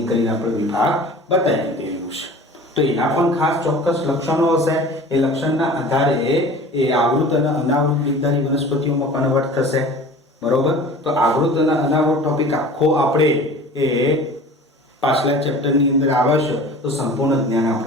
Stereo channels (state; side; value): normal; both; correlation 0.41